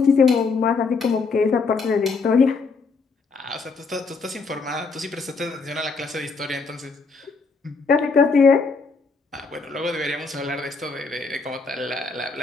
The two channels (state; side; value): quieter; right; 4.5 dB